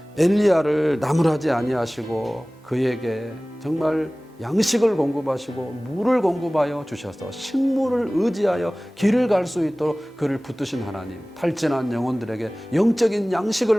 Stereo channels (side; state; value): both; normal; correlation 0.98